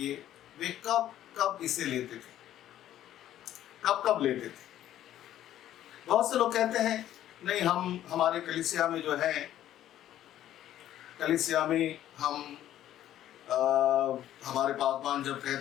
वे कब कब इसे लेते थे, कब कब लेते थे। बहुत से लोग कहते हैं नहीं, हम हमारे कलीसिया में जो है, कलीसिया में हम हमारे पासवान जब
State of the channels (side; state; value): right; quieter; 12.2 dB